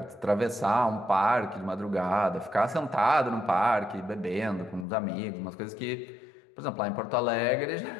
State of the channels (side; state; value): right; drops out; at 4.9 s